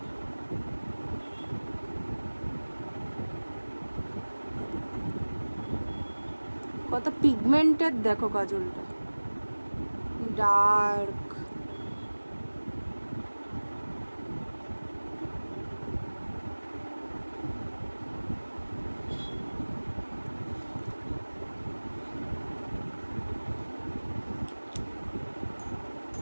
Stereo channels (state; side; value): inverted; both; correlation -1.00